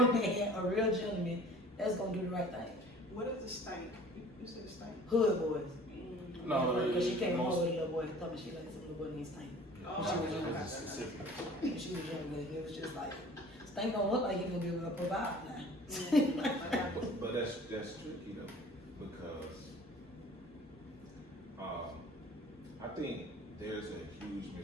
gentleman that's gonna do the right thing. What is the stank? You said the stank? Hood boys. No, Because she came home with a little boy and told me she liked some little boy named Stank. Oh, She was younger. Specific. She was younger, and it was just like, Stank don't look like he's gonna be able to provide now. But that's tricky though, because I think there's a huge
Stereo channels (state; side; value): normal; both; correlation 0.48